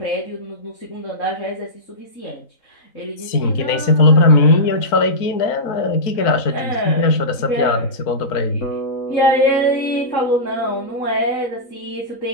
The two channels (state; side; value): late; right; 3.9 ms